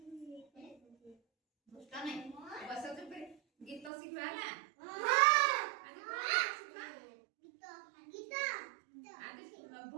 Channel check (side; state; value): left; drops out; at 3.9 s